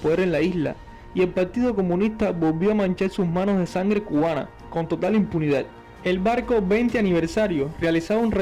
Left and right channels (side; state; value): both; identical; correlation 1.00